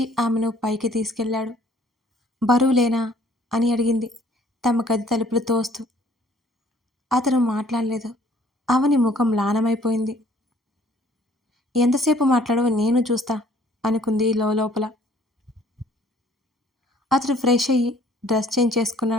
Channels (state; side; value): normal; both; correlation 0.58